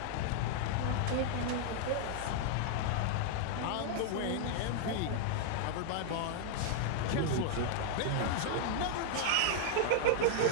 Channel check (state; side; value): different; both; correlation -0.01